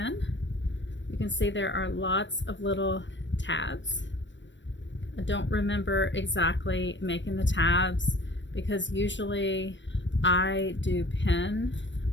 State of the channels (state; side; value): late; right; 0.53 ms